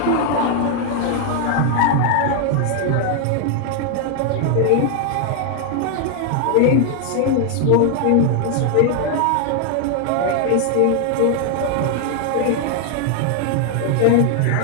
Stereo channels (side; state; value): both; different; correlation 0.00